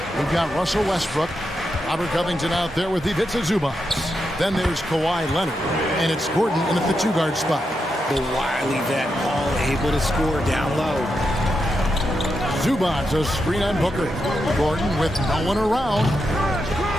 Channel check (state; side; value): normal; both; correlation 0.85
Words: We've got Russell Westbrook, Robert Covington out there with Ivica Zubac. Then there's Kawhi Leonard, and it's Gordon in at the 2-guard spot. The wily vet, Paul able to score down low. Zubac a screen on Booker. Gordon with no one around.